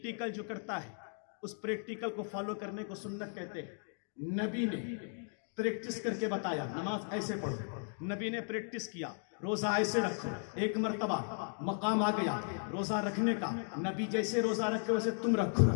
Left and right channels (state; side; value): silent; right; 54 dB below the other